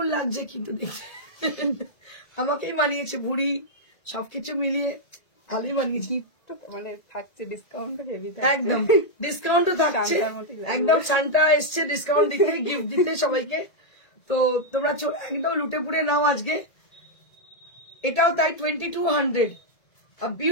লাগছে কিন্তু দেখতে, আমাকেই মানিয়েছে, বুড়ি সবকিছু মিলিয়ে ভালোই মানিয়েছি। মানে থাকছে ডিসকাউন্ট হেভি, একদম ডিসকাউন্টও থাকছে, একদম সান্তা এসছে ডিসকাউন্ট দিতে, গিফট দিতে সবাইকে। তো তোমরা একদম লুটে পুড়ে নাও আজকে। এটাও তাই 2200, a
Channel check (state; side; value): late; right; 1.8 ms